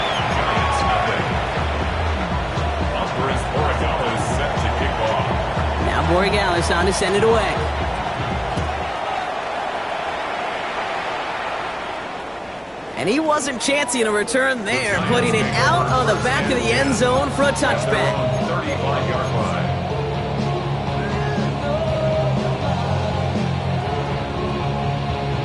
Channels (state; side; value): identical; both; correlation 1.00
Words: Now Borregales on to send it away. And he wasn't chancing a return there, putting it out on the back of the end zone for a touchback.